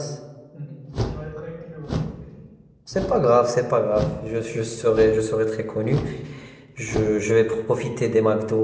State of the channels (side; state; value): both; identical; correlation 1.00